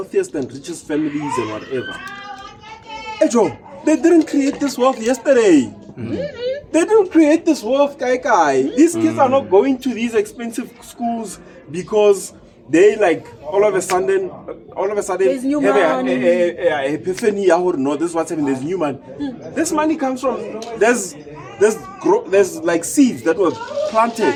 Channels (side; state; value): both; identical; correlation 1.00